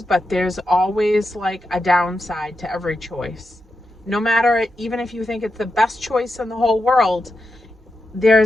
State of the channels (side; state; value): both; normal; correlation 0.87